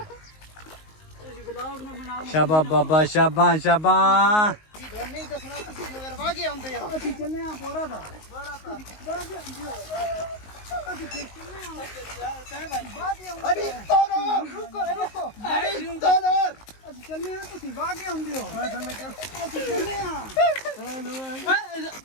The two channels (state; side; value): late; right; 19 ms